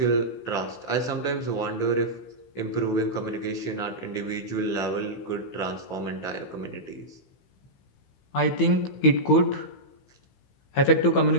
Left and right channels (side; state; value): right; late; 15 ms